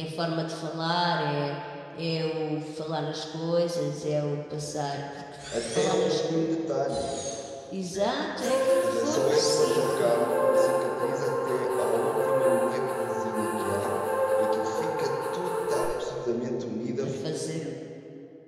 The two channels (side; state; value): both; identical; correlation 1.00